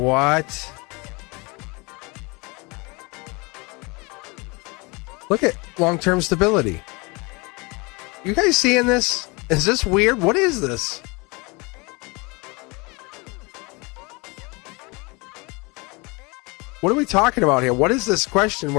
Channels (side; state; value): right; quieter; 27.5 dB